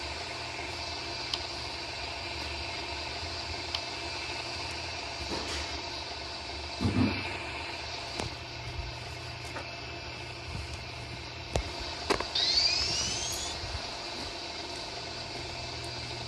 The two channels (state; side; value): identical; both; correlation 1.00